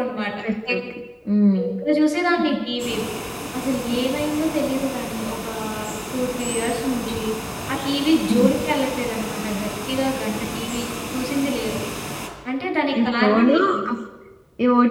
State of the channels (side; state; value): both; identical; correlation 1.00